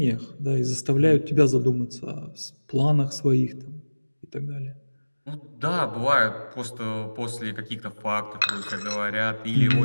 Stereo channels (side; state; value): both; inverted; correlation -1.00